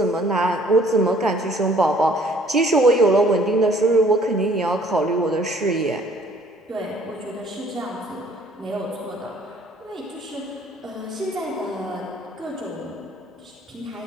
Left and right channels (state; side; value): normal; both; correlation 0.58